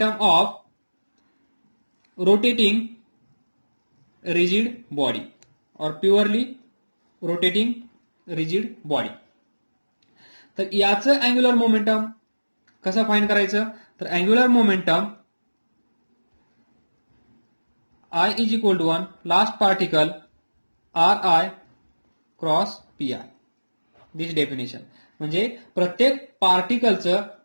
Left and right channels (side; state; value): both; inverted; correlation -1.00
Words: of rotating rigid body और प्युअरली रोटेटिंग रिजिड बॉडी. तर याचं अँग्युलर मोमेंटम कसं फाइंड करायचं? तर angular momentum I is equal to 1 last particle Ri cross Pi. This definition. म्हणजे प्रत्येक पार्टिकलचं